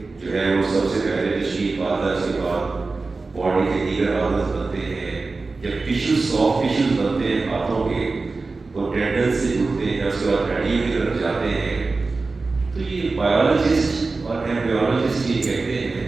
جو ہے وہ سب سے پہلے تشکیل پاتا ہے، اس کے بعد باڈی کے دیگر آرگنز بنتے ہیں، جب ٹیشوز سافٹ ٹیشوز بنتے ہیں ہاتھوں کے، وہ ٹینڈن سے جڑتے ہیں، اس کے بعد ہڈیوں کی طرف جاتے ہیں۔ تو یہ بایولوجسٹ اور ایمبریولوجسٹ یہ کہتے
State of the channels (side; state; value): left; quieter; 3.8 dB